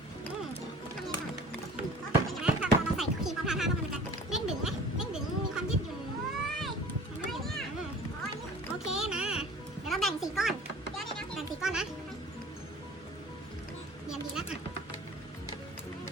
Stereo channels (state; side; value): normal; both; correlation 0.45